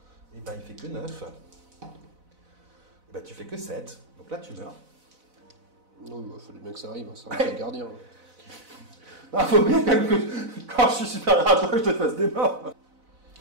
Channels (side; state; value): left; late; 4.0 ms